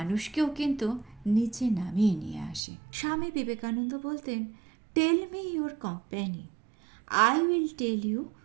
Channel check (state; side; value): drops out; left; at 2.6 s